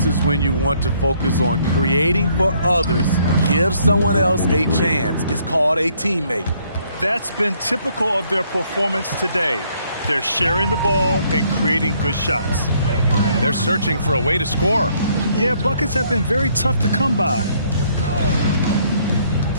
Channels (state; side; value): inverted; both; correlation -0.67